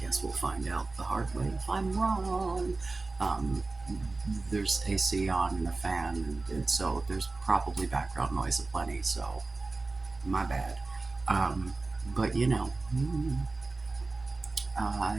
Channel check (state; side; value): quieter; left; 3.5 dB